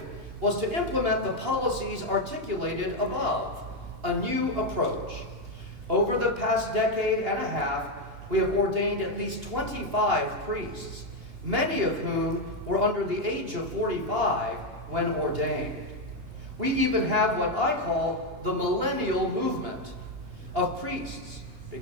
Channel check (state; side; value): late; left; 2.8 ms